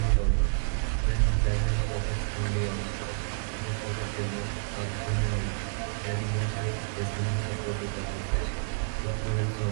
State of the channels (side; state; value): left; silent; 58 dB below the other